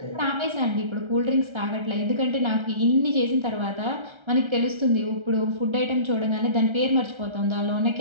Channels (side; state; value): left; late; 1.3 ms